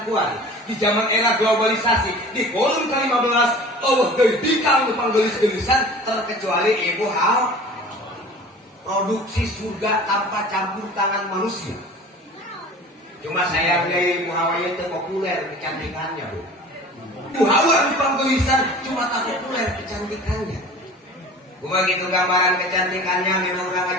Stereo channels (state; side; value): normal; both; correlation 0.42